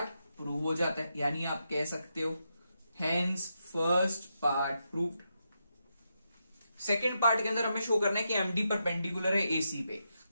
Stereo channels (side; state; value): both; inverted; correlation -0.84